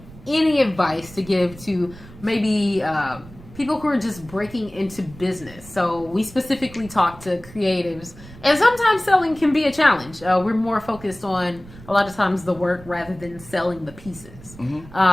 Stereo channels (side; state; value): right; noise; rumble, 19 dB below the sound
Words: any advice to give to maybe people who are just breaking into business? So we specifically talk to creatives, and sometimes selling can be a challenge. We're more focused on a lot of times the work rather than selling the pieces.